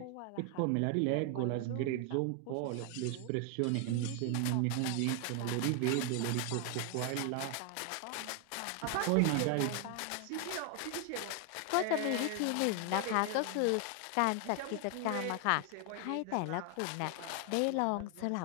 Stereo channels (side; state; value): both; different; correlation 0.00